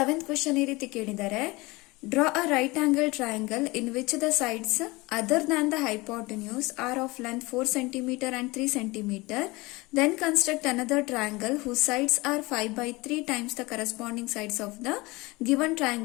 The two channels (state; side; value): quieter; right; 22.9 dB